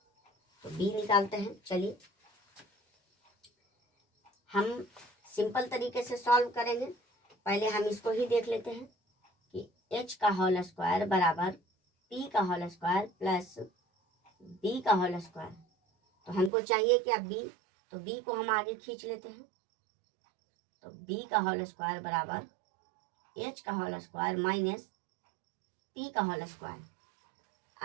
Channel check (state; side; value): drops out; left; at 16.5 s